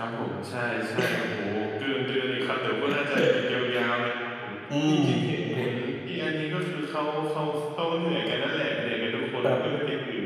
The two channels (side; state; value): both; identical; correlation 1.00